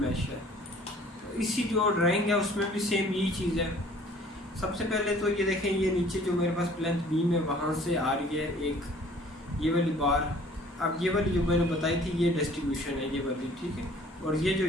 है। तो इसी जो ड्राइंग है उसमें भी सेम यही चीज़ है। सबसे पहले तो ये देखें, ये नीचे जो मेरे पास प्लेंथ बीम है वहाँ से आ रही है एक ये वाली बार। अब ये वाली जो मैंने बताई थी ये डिस्ट्रीब्यूशन है, ये वाली, ठीक है। और ये जो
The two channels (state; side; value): normal; both; correlation 0.53